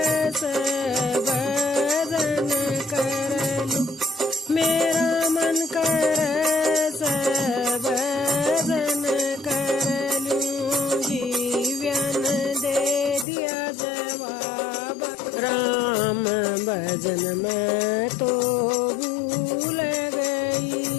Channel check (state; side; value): drops out; right; at 13.2 s